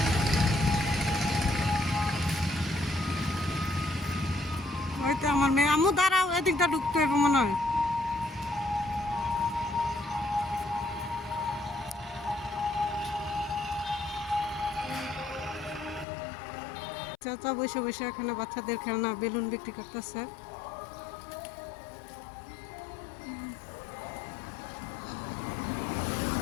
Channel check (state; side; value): drops out; right; at 16.1 s